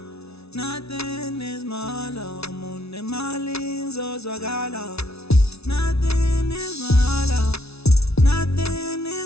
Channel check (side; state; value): right; late; 0.79 ms